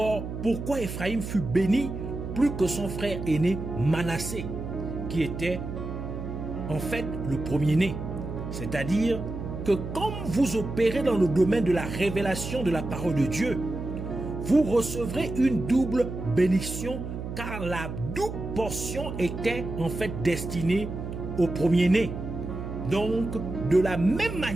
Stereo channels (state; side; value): noise; right; hum, 7 dB below the sound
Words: pourquoi Ephraïm fut béni plus que son frère aîné Manassé, qui était en fait le premier-né. C'est-à-dire que comme vous opérez dans le domaine de la révélation de la parole de Dieu, vous recevrez une double bénédiction, car la double portion était en fait destinée au premier-né. Donc, de la même